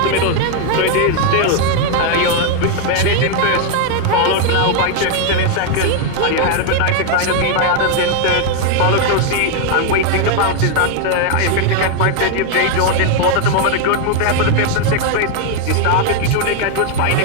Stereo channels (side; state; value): both; different; correlation 0.01